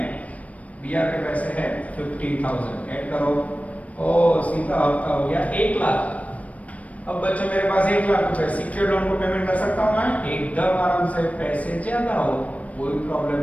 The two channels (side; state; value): right; late; 0.067 ms